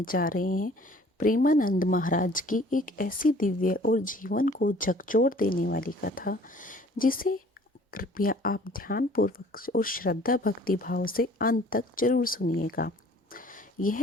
जा रहे हैं प्रेमानंद महाराज की एक ऐसी दिव्य और जीवन को झकझोर देने वाली कथा जिसे कृपया आप ध्यानपूर्वक और श्रद्धा भक्ति भाव से अंत तक जरूर सुनिएगा।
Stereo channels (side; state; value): both; normal; correlation 0.53